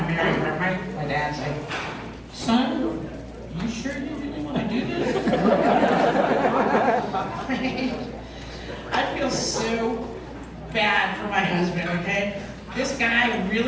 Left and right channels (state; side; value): identical; both; correlation 1.00